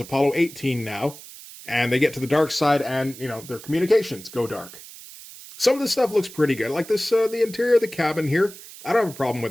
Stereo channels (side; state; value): right; noise; hiss, 16 dB below the sound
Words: 18 now. And they get to the dark side and, their communications go dark. Some of this stuff looks pretty good. Like this, the interior of the cabin here. I don't have a problem